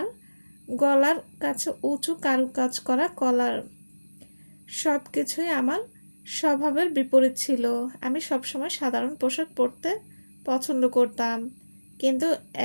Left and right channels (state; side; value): inverted; both; correlation -1.00